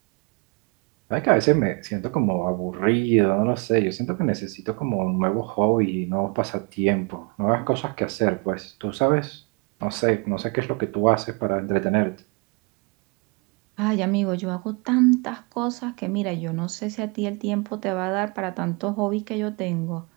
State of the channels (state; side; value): quieter; left; 31.4 dB